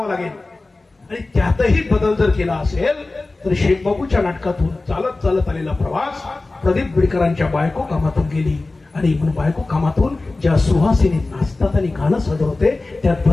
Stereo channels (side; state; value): right; quieter; 3.3 dB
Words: लागेल. आणि त्यातही बदल जर केला असेल तर शेखबाबूच्या नाटकातून चालत चालत आलेला प्रवास प्रदीप बिडकरांच्या बायको कामातून गेली. आणि म्हणून बायको कामातून ज्या सुहासिनी नाचतात आणि गाणं सादर होते त्यात